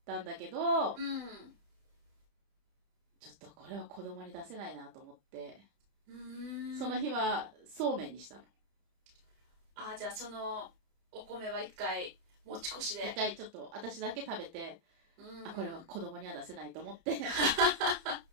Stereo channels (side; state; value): left; late; 30 ms